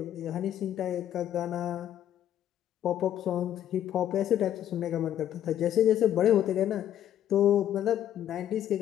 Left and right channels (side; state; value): right; quieter; 11.0 dB